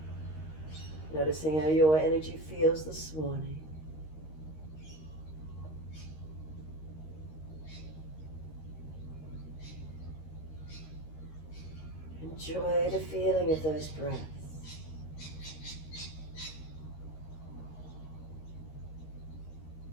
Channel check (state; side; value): late; right; 13 ms